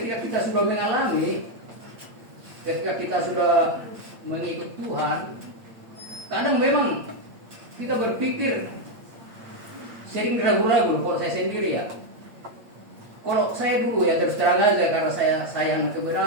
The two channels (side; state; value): left; late; 8.7 ms